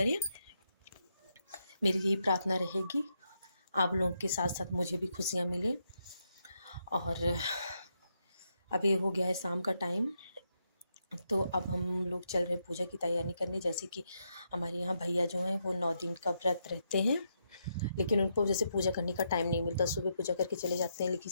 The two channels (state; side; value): inverted; both; correlation -0.81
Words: मेरी यही प्रार्थना रहेगी, आप लोगों के साथ साथ मुझे भी खुशियाँ मिले। और अभी हो गया है शाम का टाइम, तो अब हम लोग चल रहे हैं पूजा की तैयारी करने। जैसे कि हमारे यहाँ भैया जो हैं वो 9 दिन का व्रत रहते हैं, लेकिन उनको जैसे पूजा करने का टाइम नहीं मिलता। सुबह पूजा करके चले जाते हैं, लेकिन